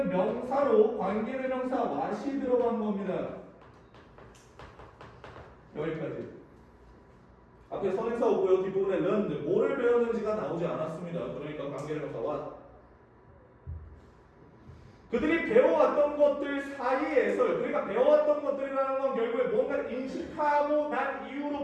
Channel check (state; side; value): identical; both; correlation 1.00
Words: 명사로 관계대명사 what이 들어간 겁니다. 여기까지. 앞에 선행사 오고요. 뒷부분에 learned, 뭐를 배웠는지가 나오지 않았습니다. 그러니까 관계대명사 what. 그들이 배워왔던 것들 사이에서, 그러니까 배워왔던 것들이라는 건 결국에 뭔가를 인식하고 난